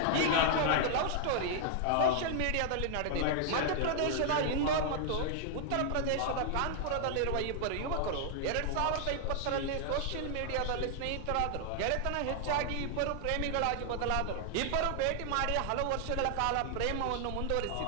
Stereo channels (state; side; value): different; both; correlation 0.00